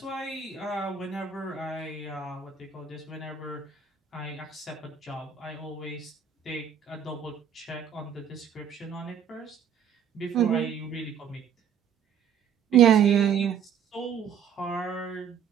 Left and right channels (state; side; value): quieter; left; 7.8 dB